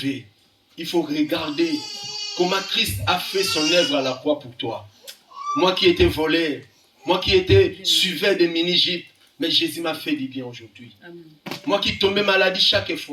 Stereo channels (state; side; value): identical; both; correlation 1.00